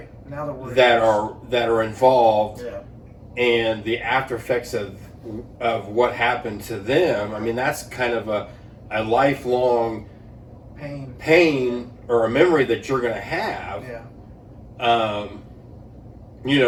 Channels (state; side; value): identical; both; correlation 1.00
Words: now that are involved, and the after effects of what happened to them. I mean, that's kind of a lifelong pain or a memory that you're going to have. And